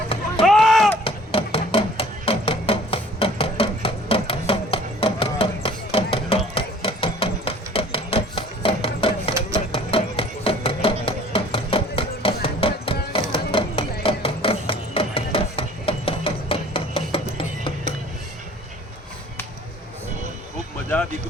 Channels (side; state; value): both; normal; correlation 0.51